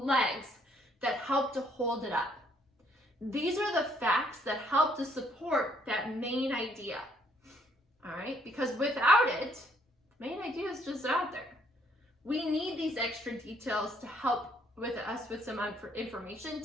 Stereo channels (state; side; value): normal; both; correlation 0.66